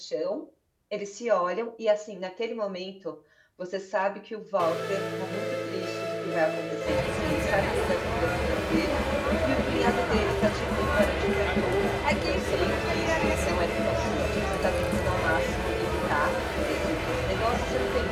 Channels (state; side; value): identical; both; correlation 1.00